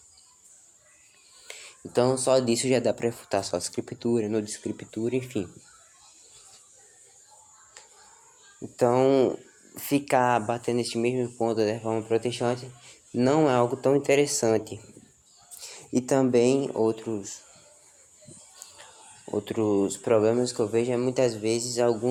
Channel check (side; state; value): both; identical; correlation 1.00